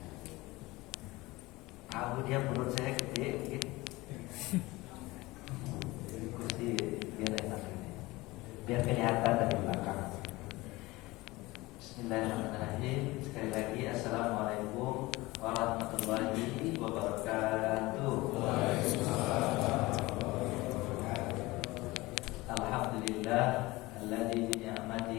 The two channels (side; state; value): right; quieter; 20.8 dB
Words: Tahu dia perut saya gede mungkin. Kursi biar enak ini. Biar kelihatan dari belakang. Bismillahirrahmanirrahim. Sekali lagi assalamualaikum warahmatullahi wabarakatuh. Alhamdulillah alladzi bi